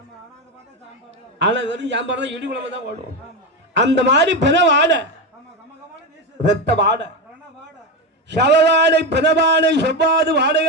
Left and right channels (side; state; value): both; normal; correlation 0.15